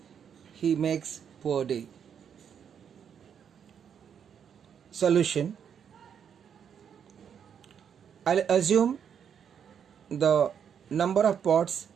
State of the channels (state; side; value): quieter; left; 7.9 dB